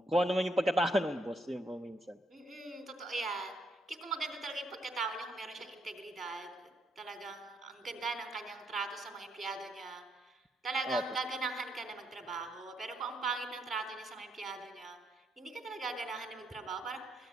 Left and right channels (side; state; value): both; normal; correlation 0.75